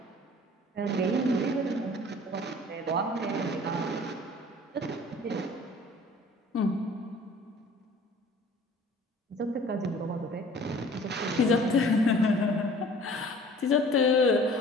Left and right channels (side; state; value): both; normal; correlation 0.49